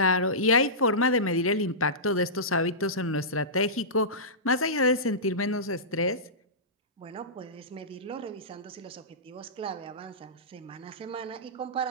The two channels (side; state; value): both; normal; correlation -0.19